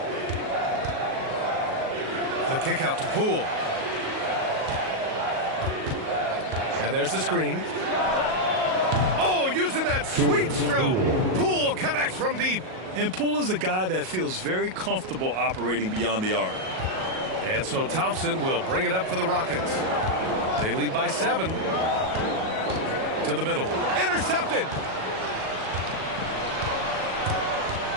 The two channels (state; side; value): late; left; 38 ms